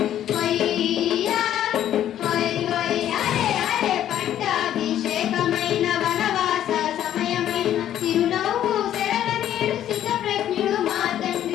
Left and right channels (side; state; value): right; quieter; 11.3 dB